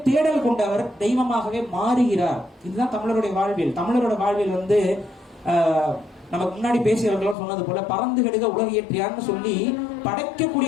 தேடல் கொண்டவர் தெய்வமாகவே மாறுகிறார். இதுதான் தமிழருடைய வாழ்வியல். தமிழரோட வாழ்வியல் வந்து நமக்கு முன்னாடி பேசியவர்களும் சொன்னது போல பறந்து கெடுக உலக இயற்றியார்னு சொல்லி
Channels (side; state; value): right; drops out; at 7.4 s